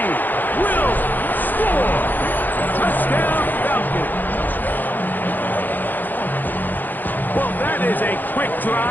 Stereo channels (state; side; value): late; right; 0.087 ms